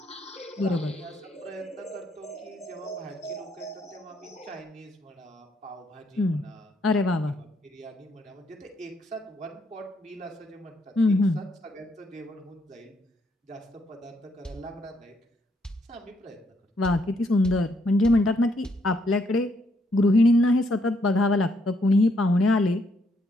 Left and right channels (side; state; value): both; normal; correlation 0.73